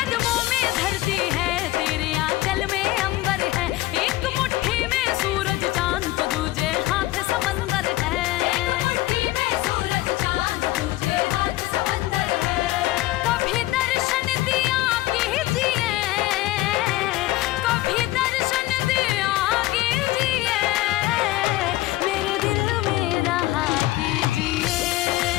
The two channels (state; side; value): quieter; right; 17.3 dB